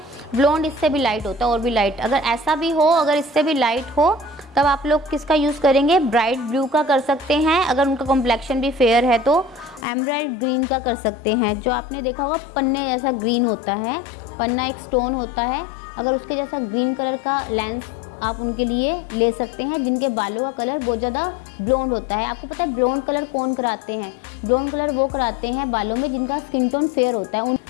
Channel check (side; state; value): right; drops out; at 9.9 s